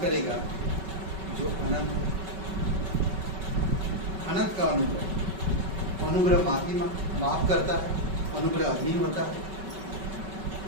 करेगा जो अनंत है। अनंत का अनुग्रह। अनुग्रह माफ करता है, अनुग्रह अधीन होता है,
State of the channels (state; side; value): late; left; 5.3 ms